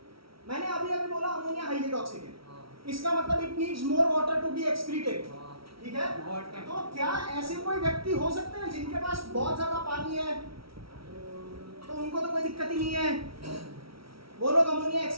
मैंने अभी बोला अमोनिया हाईली टॉक्सिक है, हाँ, इसका मतलब it needs more water to be excreted, हाँ। ठीक है। Water. तो क्या ऐसे कोई व्यक्ति हो सकते हैं जिनके पास बहुत ज्यादा पानी है, तो उनको तो कोई दिक्कत ही नहीं है, वो लोग अमोनिया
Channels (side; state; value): left; late; 0.75 ms